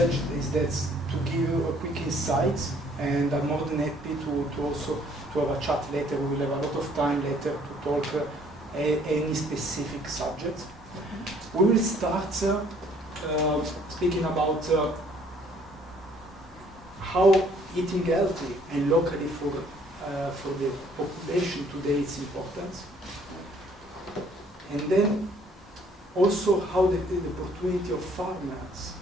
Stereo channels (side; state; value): both; normal; correlation 0.61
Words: is that to give you a quick insight, and I'm more than happy to also to have a chat later. We will have a lot of time later to talk any specific subject. We will start speaking about how eating healthy and locally for the population today is important, and then also how the opportunity of farmers